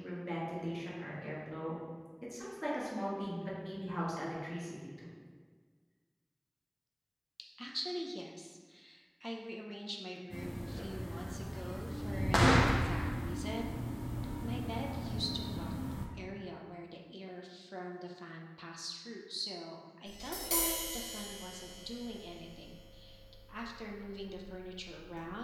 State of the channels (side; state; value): both; identical; correlation 1.00